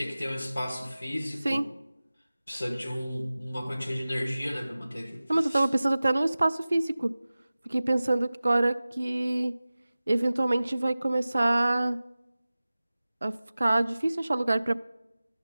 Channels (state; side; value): inverted; both; correlation -0.97